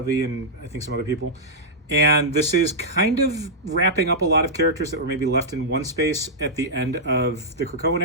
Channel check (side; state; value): both; normal; correlation -0.09